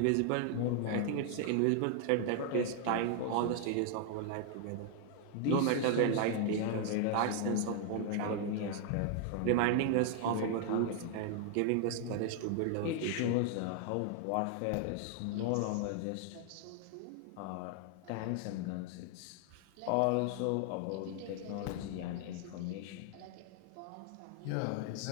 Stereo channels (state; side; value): different; both; correlation 0.00